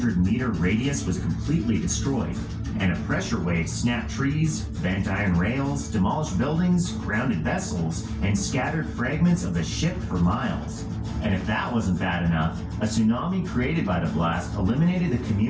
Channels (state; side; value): identical; both; correlation 1.00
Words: radius was completely destroyed, and a pressure wave snapped trees, bent iron rails, demolished buildings, grounded vessels, and scattered fragments of the ship for miles. And if that wasn't bad enough, a tsunami created by the blast eliminated the